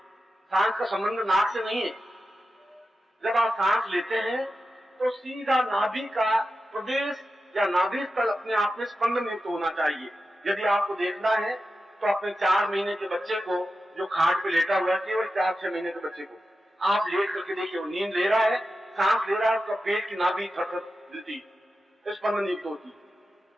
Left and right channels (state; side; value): normal; both; correlation 0.92